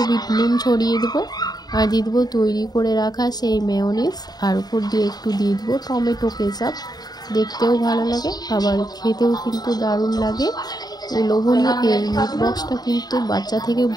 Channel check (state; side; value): late; right; 0.19 ms